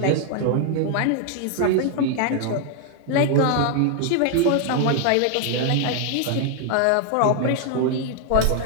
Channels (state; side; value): different; both; correlation 0.00